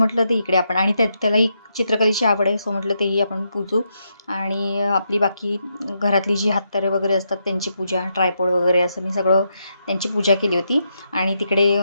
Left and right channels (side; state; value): both; inverted; correlation -0.81